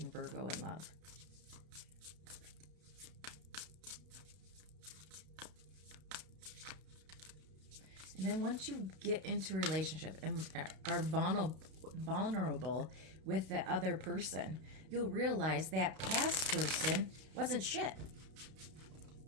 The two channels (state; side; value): late; left; 32 ms